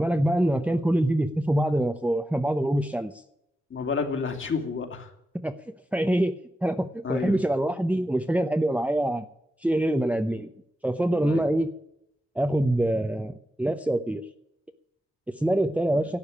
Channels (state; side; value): normal; both; correlation 0.90